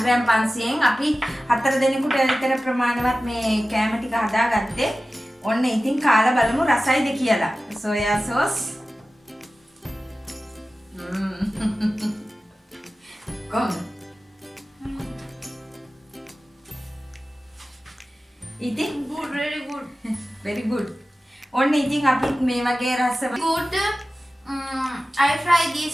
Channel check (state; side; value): normal; both; correlation 0.95